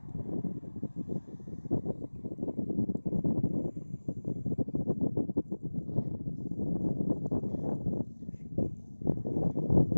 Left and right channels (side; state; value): both; inverted; correlation -1.00